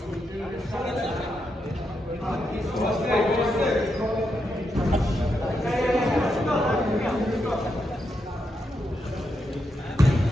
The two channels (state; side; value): normal; both; correlation 0.83